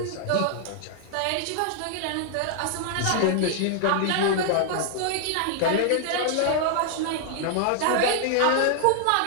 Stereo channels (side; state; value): both; different; correlation 0.00